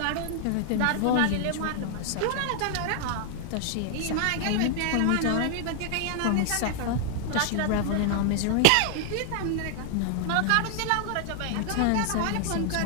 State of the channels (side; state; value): both; different; correlation 0.00